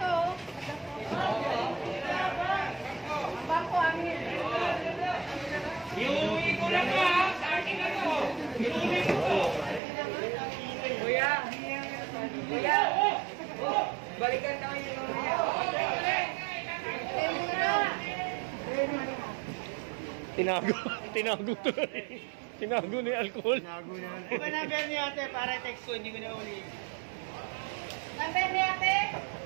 Bangko amin. Iuwi ko lang ha, sa akin ako. Iuwi ko. Kuya. Balikan tayo yung mamaya. Tinago to. Tinago ni alcohol. Di ba number niya ate para text ko, hindi ko na uli. Number ni ate?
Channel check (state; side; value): drops out; left; at 9.8 s